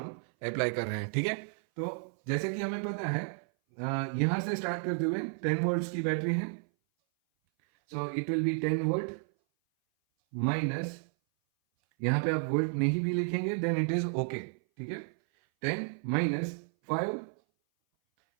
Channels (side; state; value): left; silent; 57 dB below the other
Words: अप्लाई कर रहे हैं. ठीक है, तो जैसे कि हमें पता है यहां से स्टार्ट करते हुए 10 वोल्ट्स की बैटरी है. So it will B 10 volt minus, यहां पे आप वोल्ट नहीं भी लिखेंगे देन इट इज ओके. ठीक है, 10 माइनस 5